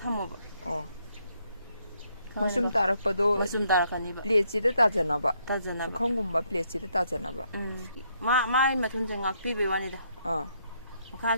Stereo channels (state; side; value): inverted; both; correlation -0.73